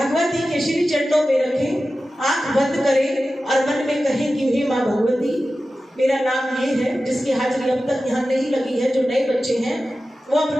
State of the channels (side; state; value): both; normal; correlation 0.94